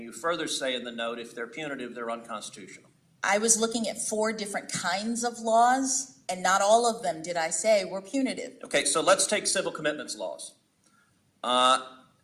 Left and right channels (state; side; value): identical; both; correlation 1.00